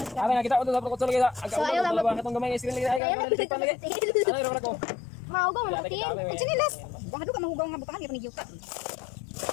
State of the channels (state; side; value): drops out; right; at 3.0 s